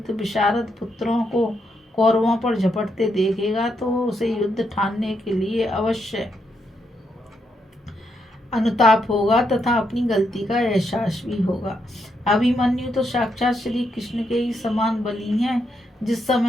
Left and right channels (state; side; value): normal; both; correlation 0.80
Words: विशारद पुत्रों को कौरवों पर झपटते देखेगा तो उसे युद्ध ठानने के लिए अवश्य अनुताप होगा तथा अपनी गलती का एहसास भी होगा। अभिमन्यु तो साक्षात श्री कृष्ण के ही समान बली हैं। जिस